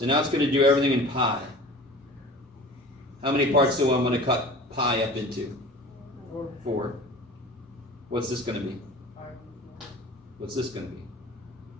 now it's going to do everything in pi. How many parts do I want to cut pi up into? 4. What's this going to be? What's this going to be?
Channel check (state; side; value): normal; both; correlation 0.40